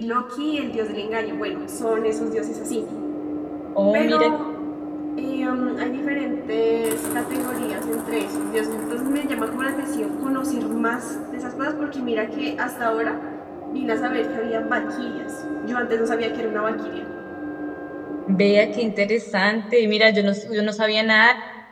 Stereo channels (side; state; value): both; identical; correlation 1.00